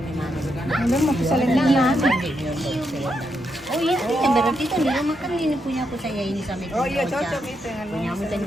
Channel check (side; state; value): both; normal; correlation 0.81